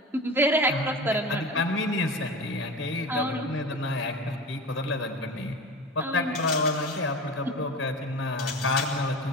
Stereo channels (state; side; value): normal; both; correlation 0.32